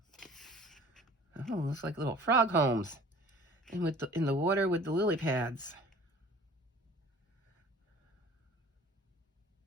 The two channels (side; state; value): both; normal; correlation 0.47